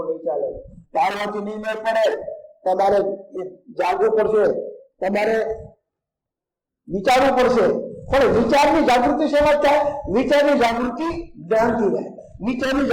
નહીં ચાલે. ચાલવાથી નહીં મેળ પડે. તમારે જાગવું પડશે, તમારે વિચારવું પડશે. પણ વિચારની જાગૃતિ શેમાં થાય? વિચારની જાગૃતિ જ્ઞાનથી રહે, વિચારની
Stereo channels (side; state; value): both; identical; correlation 1.00